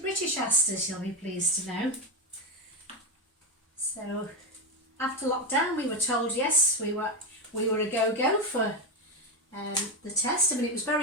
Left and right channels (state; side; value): normal; both; correlation 0.09